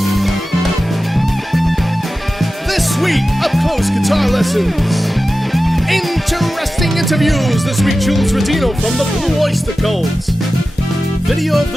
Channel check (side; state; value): both; normal; correlation 0.94